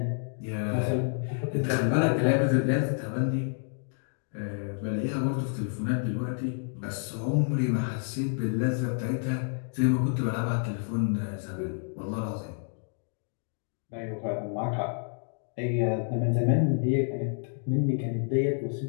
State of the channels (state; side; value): silent; right; 58 dB below the other